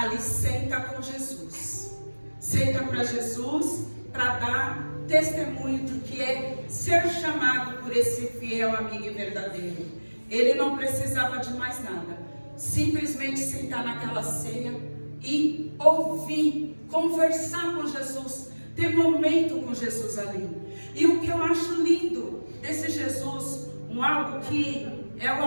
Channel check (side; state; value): both; inverted; correlation -1.00